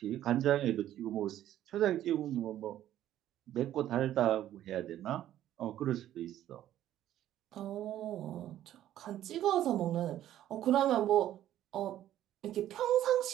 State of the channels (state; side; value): quieter; left; 12.4 dB